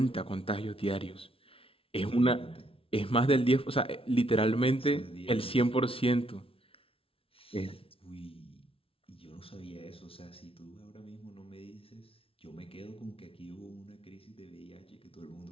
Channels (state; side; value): late; right; 0.26 ms